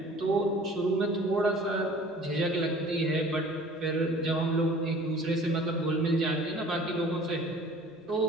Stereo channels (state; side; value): normal; both; correlation 0.48